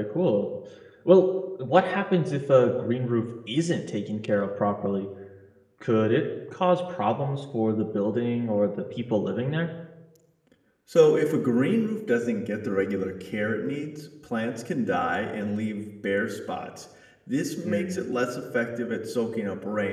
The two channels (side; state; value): both; identical; correlation 1.00